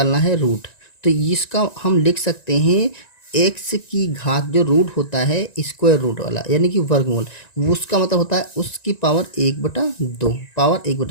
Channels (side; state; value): right; late; 1.9 ms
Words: है रूट। तो इसका हम लिख सकते हैं एक्स की घात जो रूट होता है स्क्वायर रूट वाला, यानी कि वर्गमूल। उसका मतलब होता है उसकी पावर 1/2, पावर